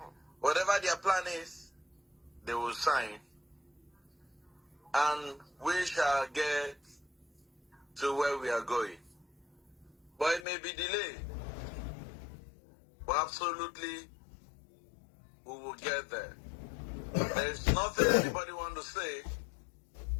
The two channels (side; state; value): right; drops out; at 10.5 s